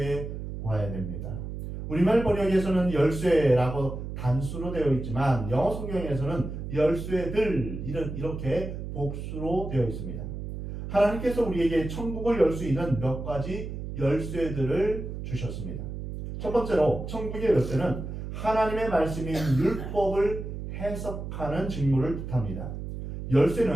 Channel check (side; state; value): right; noise; hum, 7 dB below the sound